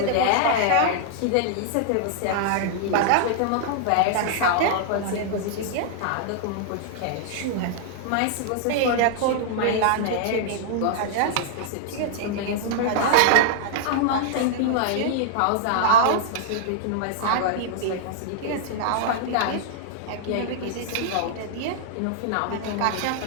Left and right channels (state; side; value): different; both; correlation -0.01